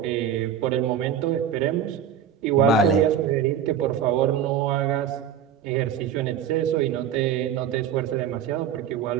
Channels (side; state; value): left; quieter; 8.4 dB